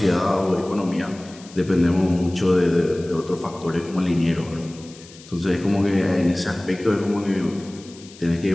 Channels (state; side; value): noise; left; hiss, 21 dB below the sound